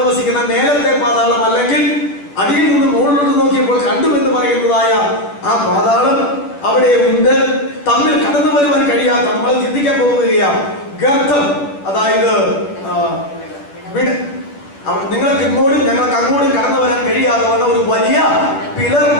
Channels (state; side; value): late; right; 10 ms